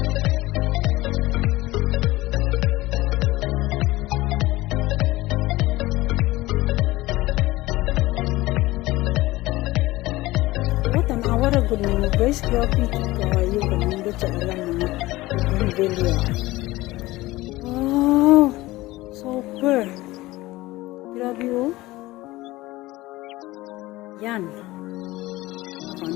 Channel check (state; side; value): quieter; right; 18.8 dB